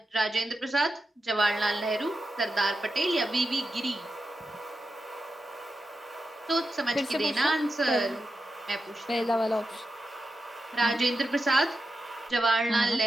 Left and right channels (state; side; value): normal; both; correlation 0.89